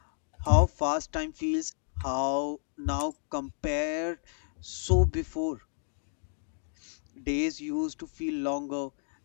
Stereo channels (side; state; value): right; silent; digital silence